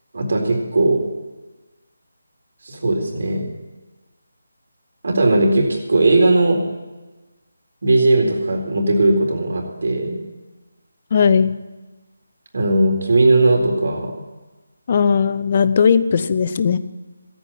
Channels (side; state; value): both; inverted; correlation -0.85